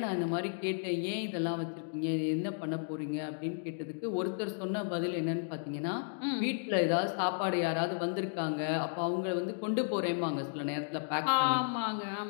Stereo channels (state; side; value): silent; right; digital silence